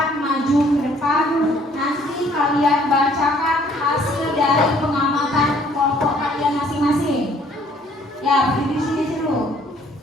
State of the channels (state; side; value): normal; both; correlation 0.60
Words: maju ke depan. Nanti kalian bacakan hasil dari pengamatan kelompok kalian masing-masing. Ya, berdiri di sini dulu.